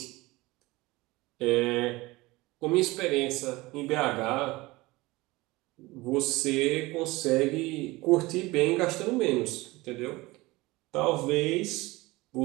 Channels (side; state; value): left; quieter; 21.2 dB